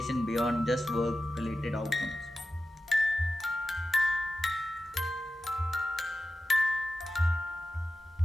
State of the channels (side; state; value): both; normal; correlation 0.93